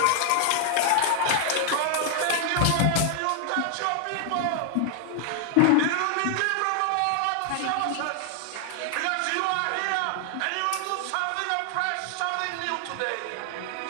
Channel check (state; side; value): different; both; correlation 0.00